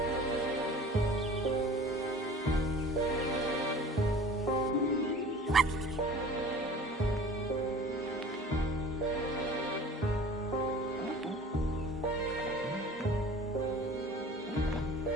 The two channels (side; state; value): both; normal; correlation 0.44